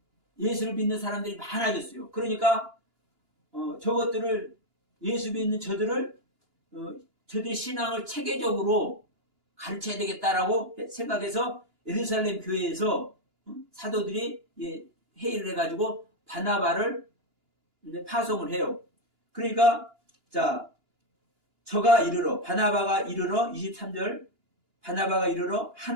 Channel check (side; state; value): left; late; 2.9 ms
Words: 예수를 믿는 사람들이 많아졌어요. 그러니까 저것들을 예수 믿는 저들을 저들의 신앙을 체계적으로 가르쳐야 되겠다라고 생각해서 예루살렘 교회에서 사도들이 회의를 해가지고 바나바를 파송을 해요. 그러니까 자 바나바가 이르러 23절 바나바가 이르러